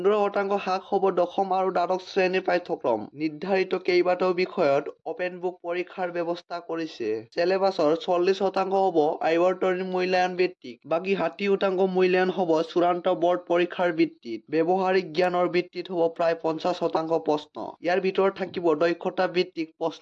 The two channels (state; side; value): identical; both; correlation 1.00